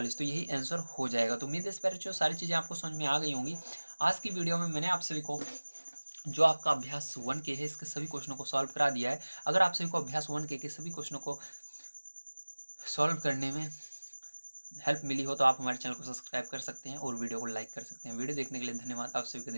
तो यही आंसर हो जाएगा। तो उम्मीद है इस पर जो सारी चीज़ें आपको समझ में आ गई होंगी। आज की वीडियो में मैंने आप सभी को जो आपका अभ्यास 1 के है इसके सभी क्वेश्चनों को सॉल्व करा दिया है। अगर आप सभी को अभ्यास 1 के सभी क्वेश्चनों को सॉल्व करने में हेल्प मिली हो तो आप हमारे चैनल को सब्सक्राइब कर सकते हैं और वीडियो को लाइक कर सकते हैं। वीडियो देखने के लिए धन्यवाद। आप सभी का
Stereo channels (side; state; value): both; inverted; correlation -1.00